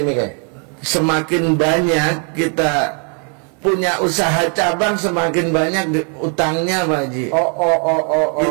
semakin banyak kita punya usaha cabang, semakin banyak utangnya Pak Haji.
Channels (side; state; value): left; quieter; 39.9 dB